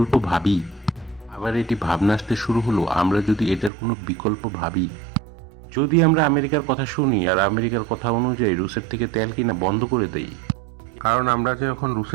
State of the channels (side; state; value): left; drops out; at 3.7 s